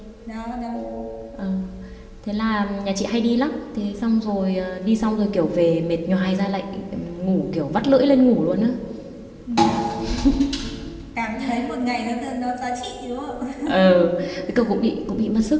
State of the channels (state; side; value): identical; both; correlation 1.00